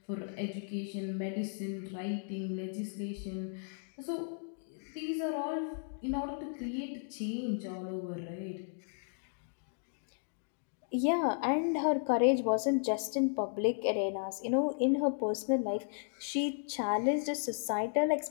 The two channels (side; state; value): right; silent; digital silence